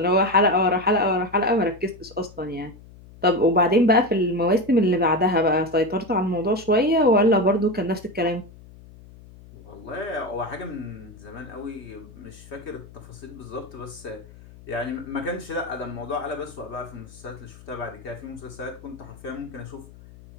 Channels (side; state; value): left; noise; hum, 20 dB below the sound